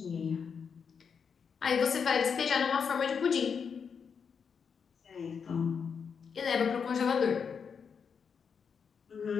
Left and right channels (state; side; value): quieter; right; 6.4 dB